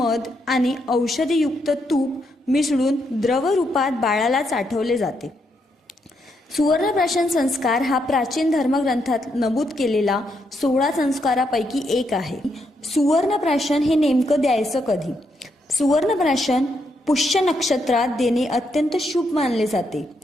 आणि औषधीयुक्त तूप मिसळून द्रव रूपात बाळाला चाठवले जाते. सुवर्णप्राशन संस्कार हा प्राचीन धर्मग्रंथात नमूद केलेला 16 संस्कारापैकी एक आहे. सुवर्णप्राशन हे नेमकं द्यायचं कधी? सुवर्णप्राशन पुष्य नक्षत्रात देणे अत्यंत शुभ मानले जाते.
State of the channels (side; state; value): both; normal; correlation 0.78